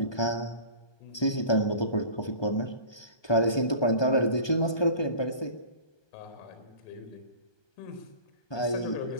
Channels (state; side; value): late; right; 1.2 ms